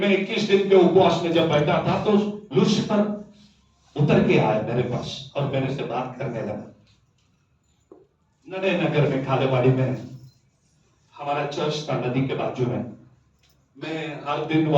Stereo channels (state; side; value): identical; both; correlation 1.00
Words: 21 दिन के उपवास में जब बैठा था तो लूसीफर उतर के आया मेरे पास और मेरे से बात करने लगा। नडे नगर में खालेवाड़ी में हमारा चर्च था, नदी के बाजू में। मैं हर दिन